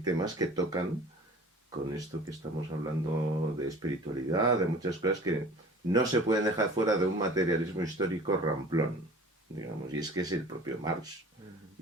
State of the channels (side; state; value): both; normal; correlation 0.44